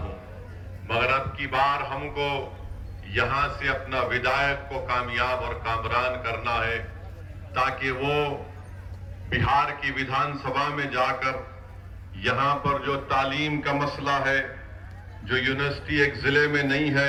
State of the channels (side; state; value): both; identical; correlation 1.00